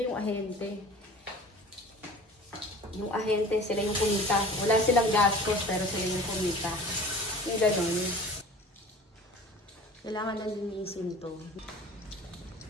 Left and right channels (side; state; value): both; normal; correlation 0.43